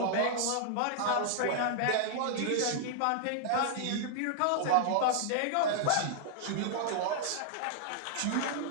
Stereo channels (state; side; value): different; both; correlation -0.01